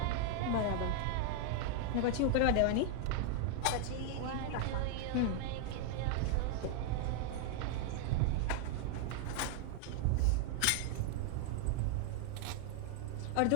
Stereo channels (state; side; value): different; both; correlation 0.00